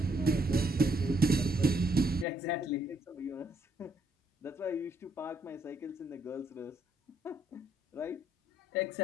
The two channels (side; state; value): both; normal; correlation 0.70